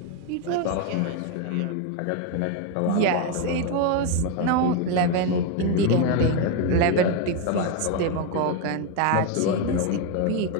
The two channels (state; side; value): different; both; correlation 0.02